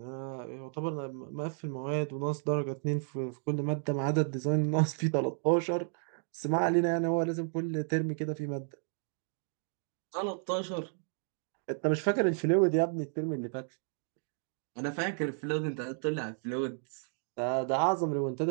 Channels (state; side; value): silent; left; 56 dB below the other